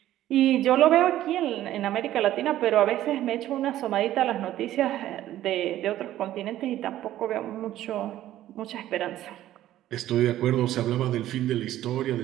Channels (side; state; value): left; quieter; 13.4 dB